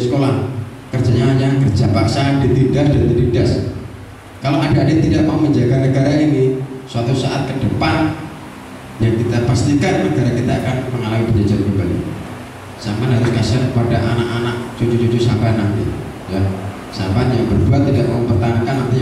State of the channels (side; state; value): both; identical; correlation 1.00